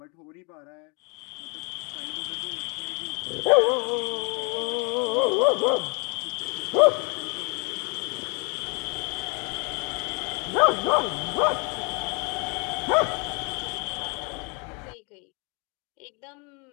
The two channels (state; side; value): quieter; right; 32.9 dB